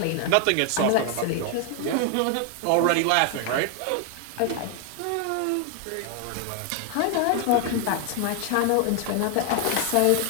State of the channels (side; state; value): both; different; correlation 0.00